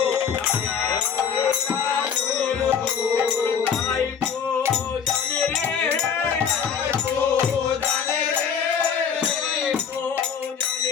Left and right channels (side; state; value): right; quieter; 7.1 dB